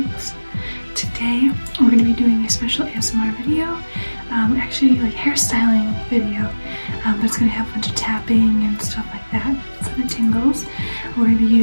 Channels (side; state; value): both; inverted; correlation -1.00